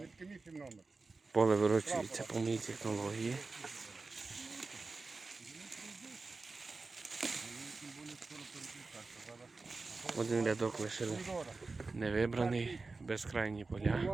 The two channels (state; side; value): quieter; left; 3.8 dB